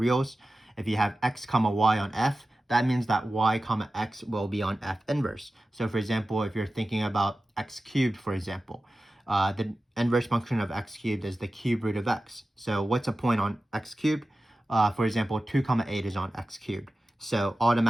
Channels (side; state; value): both; normal; correlation 0.94